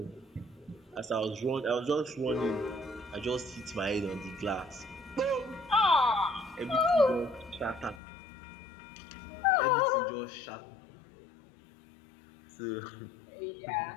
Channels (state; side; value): drops out; right; at 8.0 s